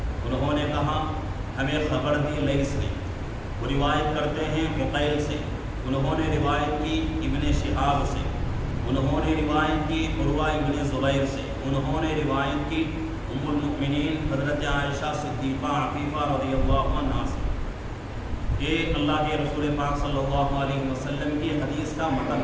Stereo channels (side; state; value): both; identical; correlation 1.00